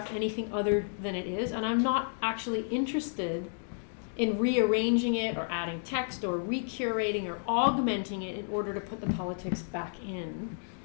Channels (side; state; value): right; silent; digital silence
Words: anything other than it is, and I'm not actually interested in rearranging it or adding text or recurating or augmenting it in order to put the politics back in.